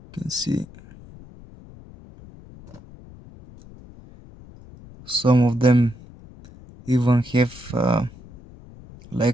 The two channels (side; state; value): left; noise; rumble, 21 dB below the sound